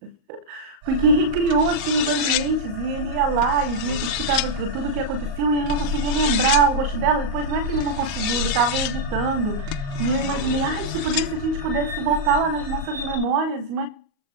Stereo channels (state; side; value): late; left; 38 ms